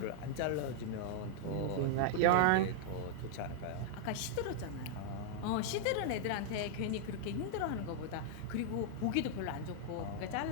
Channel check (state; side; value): different; both; correlation -0.01